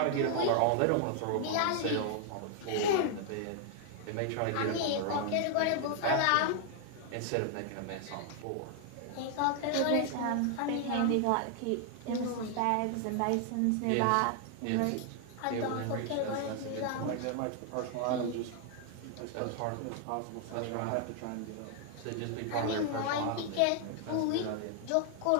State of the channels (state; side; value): different; both; correlation 0.00